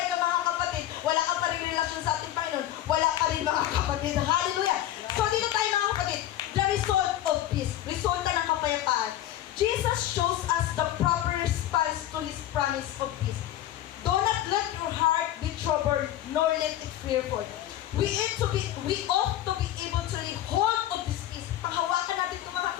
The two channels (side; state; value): right; quieter; 12.9 dB